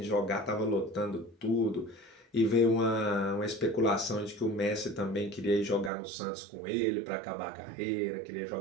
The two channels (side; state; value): left; drops out; at 5.9 s